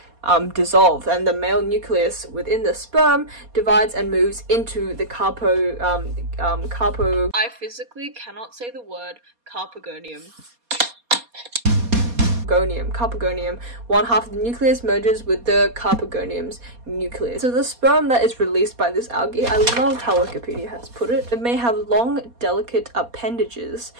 dissolve, and the male nucleus within the sperm divides and moves into the I physically cannot say the word carpogonium. Carpogonium. One half of the nucleus merges with the carpogonium's nucleus. So the sperm that is released by this algae, I love how Wikipedia has put it, it may have long, delicate appendages,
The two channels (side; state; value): left; late; 4.2 ms